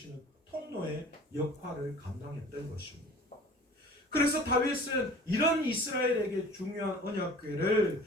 통로의 역할을 감당했던 것입니다. 그래서 다윗은 이런 이스라엘에게 중요한 언약궤를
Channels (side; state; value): both; normal; correlation 0.45